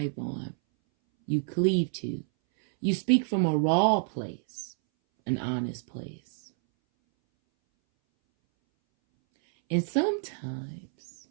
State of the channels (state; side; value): silent; left; 59 dB below the other